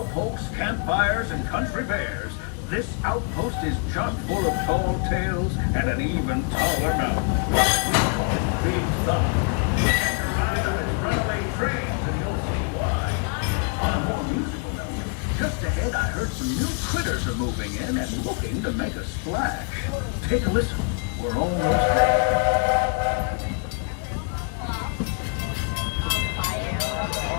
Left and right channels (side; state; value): right; quieter; 36.9 dB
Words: campfires, and country bears, this outpost is chock full of tall tales and an even taller mountain. Big fun. Just ahead, I heard some new critters are moving in and looking to make a splash. Take a listen. We're almost there.